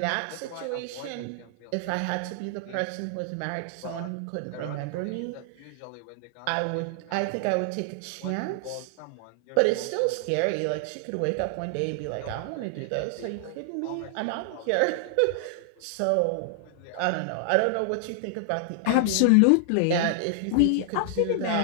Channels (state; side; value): different; both; correlation 0.00